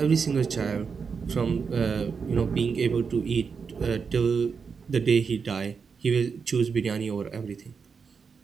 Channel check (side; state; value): left; quieter; 5.7 dB